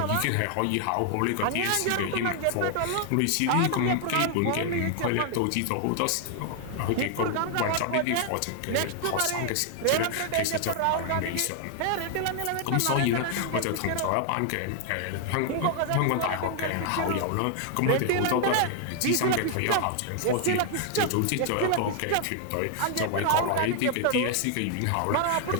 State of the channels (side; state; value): both; different; correlation 0.00